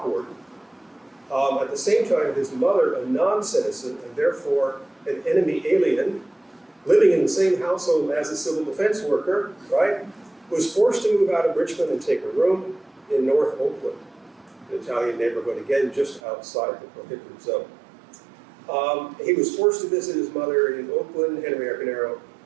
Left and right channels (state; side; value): drops out; left; at 16.2 s